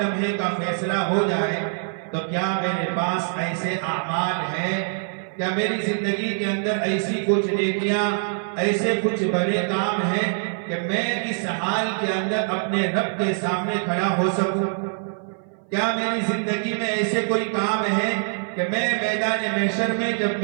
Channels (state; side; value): silent; left; 59 dB below the other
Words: لمحے کا فیصلہ ہو جائے، تو کیا میرے پاس ایسے اعمال ہیں، کیا میری زندگی کے اندر ایسی کچھ نیکیاں، ایسے کچھ بڑے کام ہیں کہ میں اس حال کے اندر اپنے رب کے سامنے کھڑا ہو سکوں؟ کیا میری زندگی میں ایسے کوئی کام ہے کہ میں میدان محشر میں جب